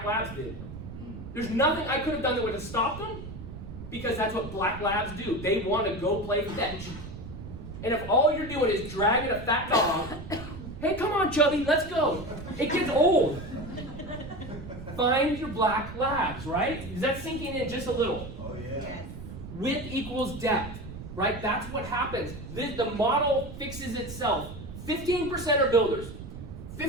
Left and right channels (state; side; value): noise; right; rumble, 11 dB below the sound